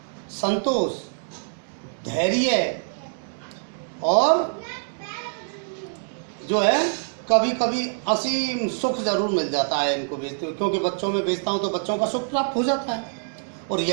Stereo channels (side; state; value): left; silent; digital silence